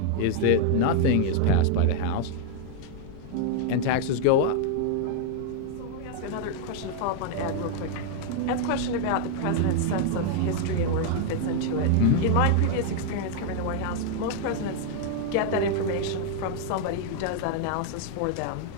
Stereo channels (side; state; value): both; different; correlation 0.00